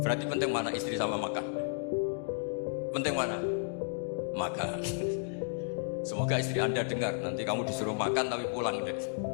Berarti penting mana istri sama makan? Penting mana? Makan. Semoga istri Anda dengar. Nanti kamu disuruh makan tapi pulang deh.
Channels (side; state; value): right; silent; digital silence